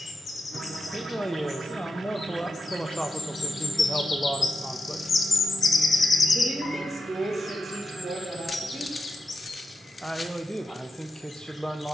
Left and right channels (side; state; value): both; normal; correlation 0.88